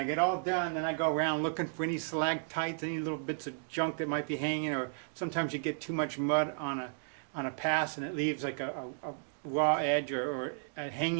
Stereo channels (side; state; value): left; silent; digital silence